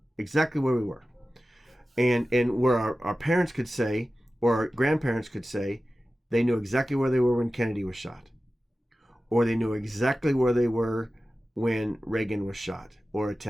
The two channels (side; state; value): both; normal; correlation 0.95